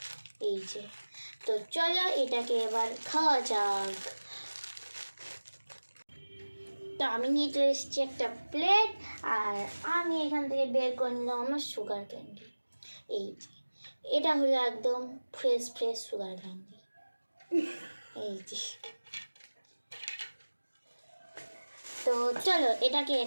এই যে। তো চলো এটাকে এবার খাওয়া যাক। তো আমি নিয়ে চলে এসেছি একটা প্লেট, আর আমি এখান থেকে বের করে নিলাম আমার সুগার ক্যান্ডি। এই যে, এটা হলো একদম ফ্রেশ ফ্রেশ সুগার ক্যান্ডি, এই যে। তো চলো এটাকে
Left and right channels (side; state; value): both; inverted; correlation -1.00